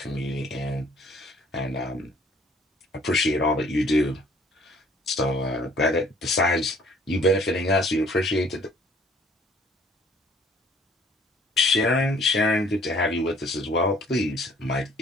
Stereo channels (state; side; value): normal; both; correlation 0.56